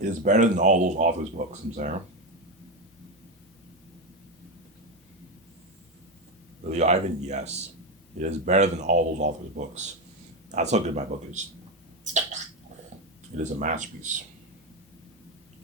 It is better than all those authors' books, I'm saying. Really, Ivan? Yes. It is better than all those authors' books. That's how good my book is. It is a masterpiece.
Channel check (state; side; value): normal; both; correlation 0.11